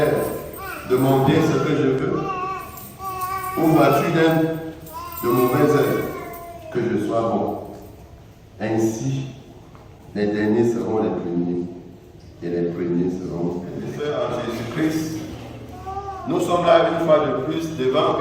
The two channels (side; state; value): both; identical; correlation 1.00